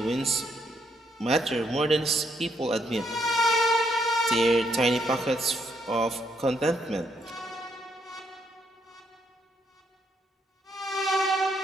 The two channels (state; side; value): normal; both; correlation 0.74